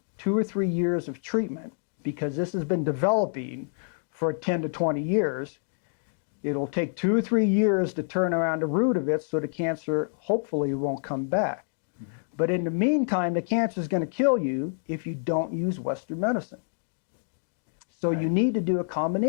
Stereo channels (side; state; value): right; silent; digital silence